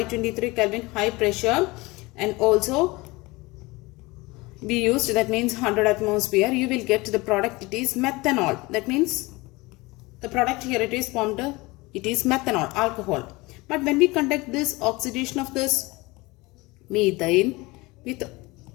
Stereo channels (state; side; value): quieter; right; 22.8 dB